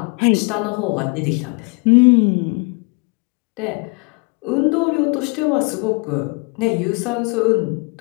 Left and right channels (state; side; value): quieter; right; 32.6 dB